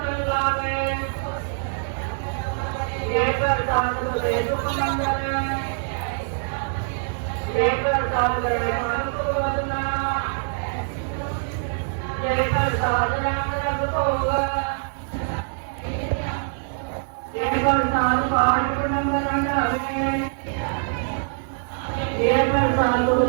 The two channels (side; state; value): left; silent; digital silence